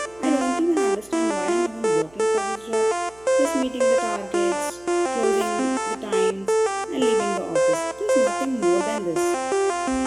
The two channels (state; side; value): noise; right; hum, 27 dB below the sound